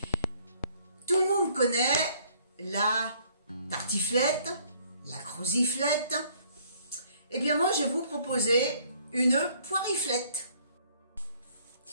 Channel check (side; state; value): both; inverted; correlation -0.61